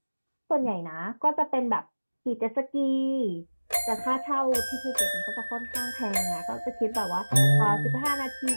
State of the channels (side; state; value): both; inverted; correlation -1.00